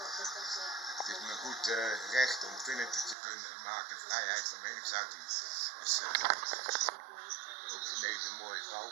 het is me goed recht om filmpjes te kunnen maken, vrijheid van meningsuiting. Dus ook in deze mooie vrouw.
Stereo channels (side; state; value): left; drops out; at 3.2 s